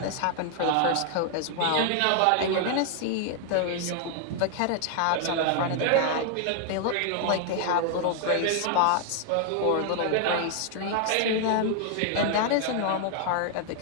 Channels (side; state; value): both; different; correlation 0.00